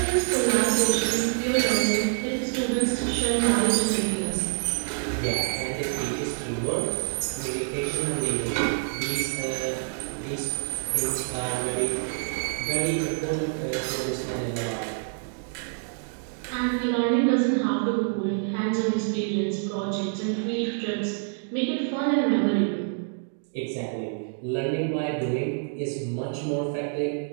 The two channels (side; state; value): left; silent; digital silence